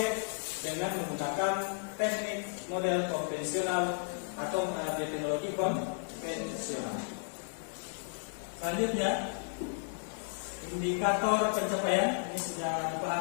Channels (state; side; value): silent; right; digital silence